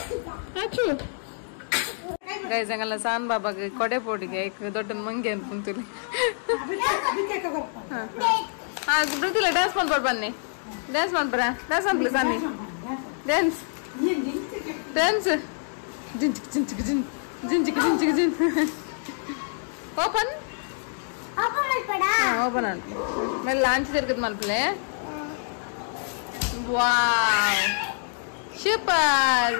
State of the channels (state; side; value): silent; right; digital silence